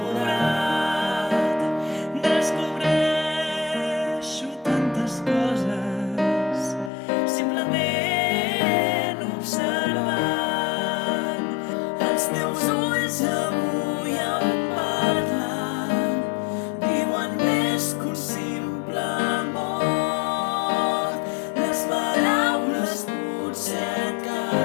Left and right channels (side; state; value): right; drops out; at 6.9 s